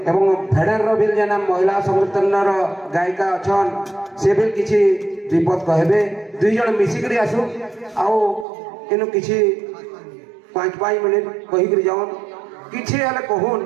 एवं फेडर रो बिल जना महिला संगठन रो गायिका अछन से भी किछि दीपद कहबे दुई जण मिसिकरी आसु आउ इनु किछि 5 मिनिट कहि करी जावन किछि हले कहून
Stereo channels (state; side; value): drops out; left; at 8.5 s